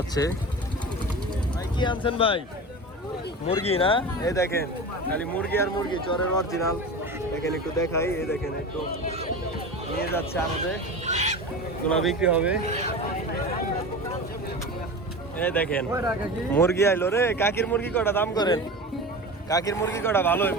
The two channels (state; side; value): normal; both; correlation 0.30